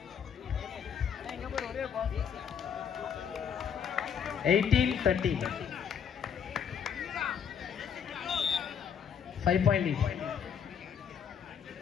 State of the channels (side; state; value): right; quieter; 7.7 dB